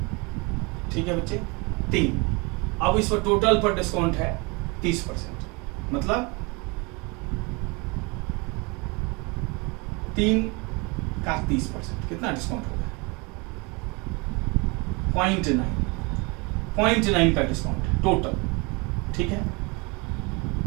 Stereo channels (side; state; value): left; quieter; 28.3 dB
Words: ठीक है बच्चे, 3। अब इस पर टोटल पर डिस्काउंट है 30%, मतलब 3 का 30%, कितना डिस्काउंट हो गया? 0.9 का डिस्काउंट है टोटल, ठीक है।